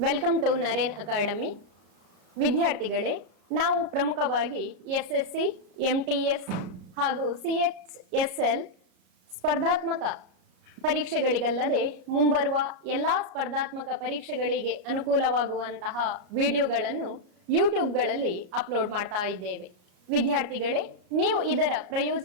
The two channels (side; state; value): left; late; 34 ms